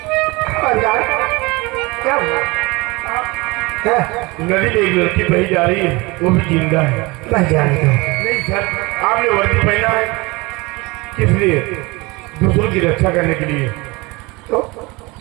क्या नदी में एक लड़की बही जा रही है, वो भी जिंदा है। बस जाने दो। नहीं सर, आपने वर्दी पहना है किस लिए? दूसरों की रक्षा करने के लिए।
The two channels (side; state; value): left; quieter; 24.4 dB